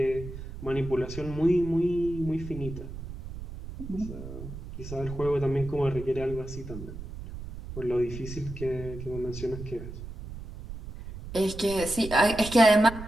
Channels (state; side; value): noise; right; rumble, 11 dB below the sound